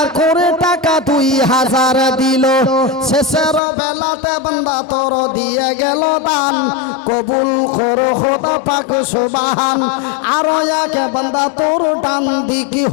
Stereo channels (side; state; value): right; drops out; at 3.6 s